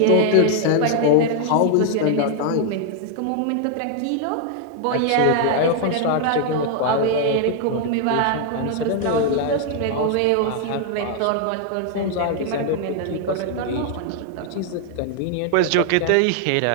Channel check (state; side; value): different; both; correlation 0.00